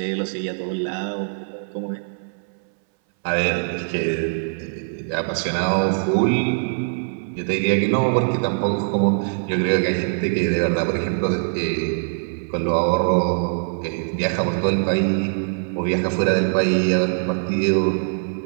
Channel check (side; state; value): left; silent; 62 dB below the other